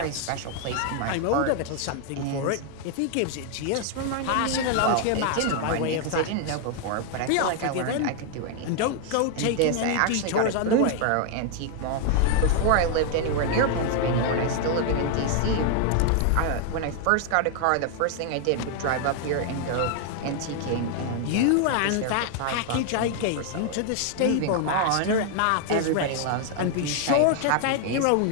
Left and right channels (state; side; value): different; both; correlation 0.00